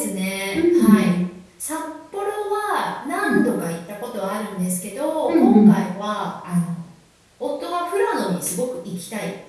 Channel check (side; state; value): both; identical; correlation 1.00